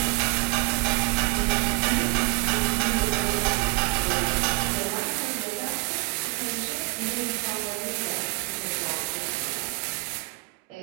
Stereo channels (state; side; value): quieter; left; 24.8 dB